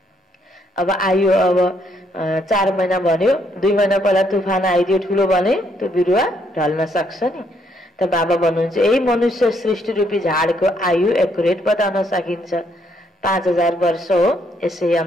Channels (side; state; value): both; normal; correlation 0.72